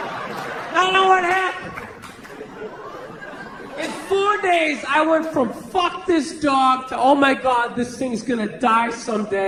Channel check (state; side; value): identical; both; correlation 1.00